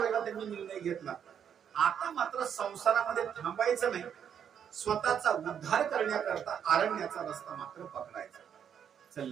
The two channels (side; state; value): left; quieter; 8.3 dB